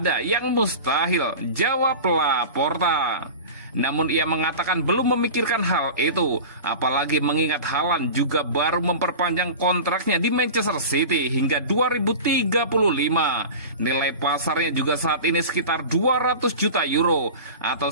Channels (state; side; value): inverted; both; correlation -0.32